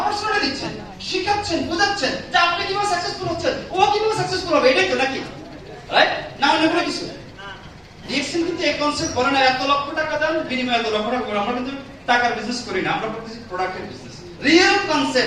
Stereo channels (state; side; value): identical; both; correlation 1.00